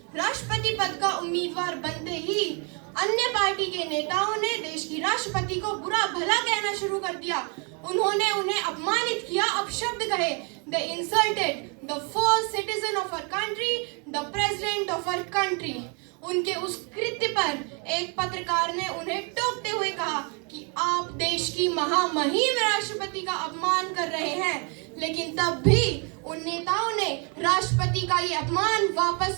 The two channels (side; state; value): left; quieter; 35.4 dB